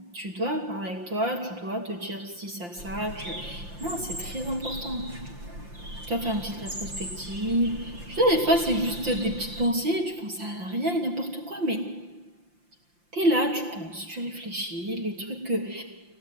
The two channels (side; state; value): left; late; 5.8 ms